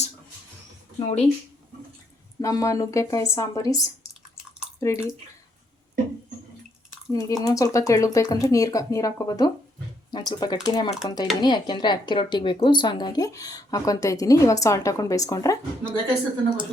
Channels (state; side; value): normal; both; correlation 0.74